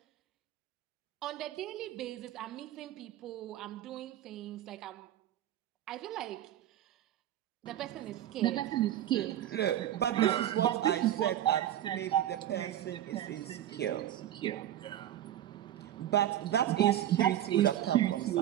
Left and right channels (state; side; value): quieter; left; 12.1 dB